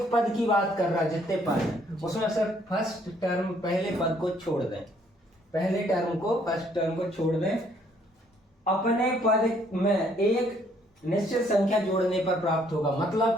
पद की बात कर रहा है, जितने पद हैं उसमें सिर्फ फर्स्ट टर्म, पहले पद को छोड़ दें, पहले टर्म को, फर्स्ट टर्म को छोड़ दें, अपने पद में एक निश्चित संख्या जोड़ने पर प्राप्त होगा। मतलब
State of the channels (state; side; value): normal; both; correlation 0.65